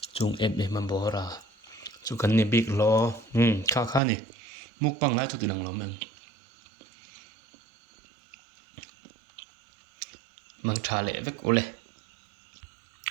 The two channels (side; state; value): left; drops out; at 4.0 s